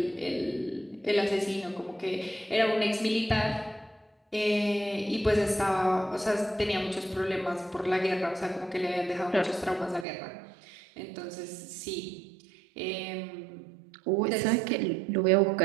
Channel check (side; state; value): left; drops out; at 10.1 s